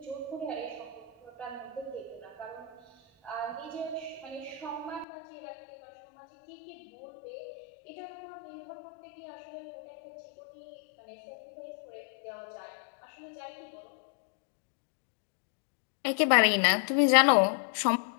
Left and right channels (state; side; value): drops out; right; at 5.1 s